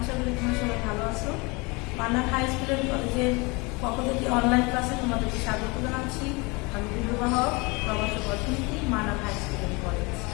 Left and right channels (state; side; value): quieter; right; 27.1 dB